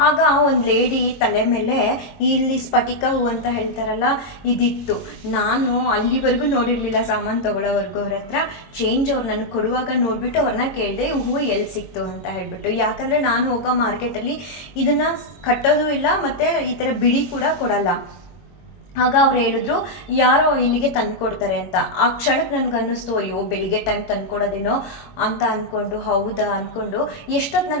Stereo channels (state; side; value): late; right; 22 ms